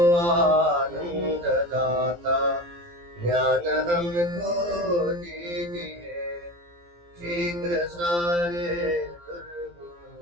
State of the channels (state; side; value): late; left; 17 ms